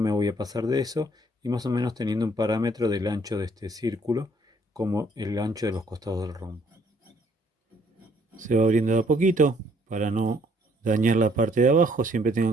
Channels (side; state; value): both; normal; correlation 0.64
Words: voy a pasar de eso, y más o menos teniendo un parámetro del ancho de este círculo como el ancho de los costados del rombo. Se va abriendo de a poquito para no dañar la parte de abajo. Siempre